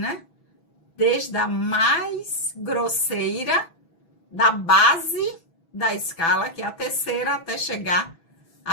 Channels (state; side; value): late; right; 6.0 ms